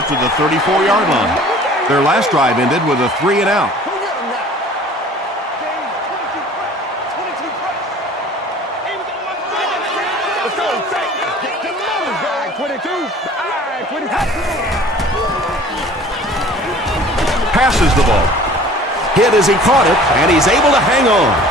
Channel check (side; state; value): both; normal; correlation 0.48